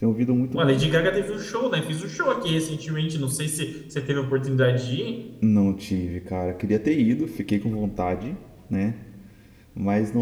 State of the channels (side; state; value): both; identical; correlation 1.00